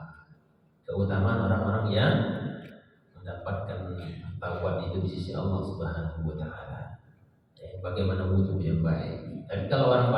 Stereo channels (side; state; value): both; identical; correlation 1.00